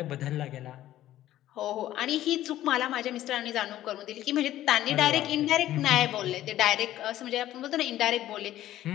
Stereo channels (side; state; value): right; quieter; 13.6 dB